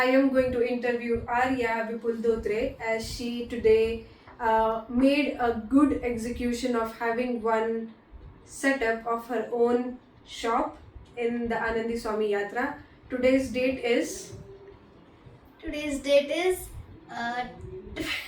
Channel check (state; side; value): identical; both; correlation 1.00